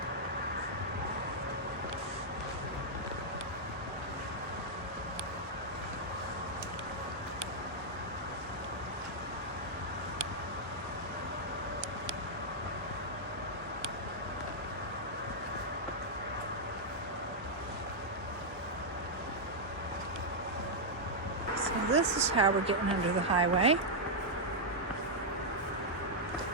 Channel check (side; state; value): both; normal; correlation -0.05